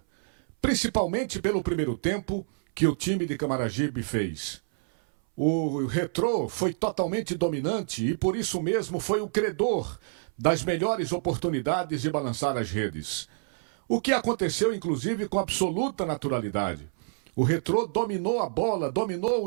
Principalmente pelo primeiro tempo que o time de Camaragibe fez. O Retrô foi totalmente dominante e por isso mesmo foi o credor das melhores oportunidades de balançar as redes. O que aconteceu inclusive com absoluta naturalidade. O Retrô dominou a bola, dominou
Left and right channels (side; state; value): left; silent; 60 dB below the other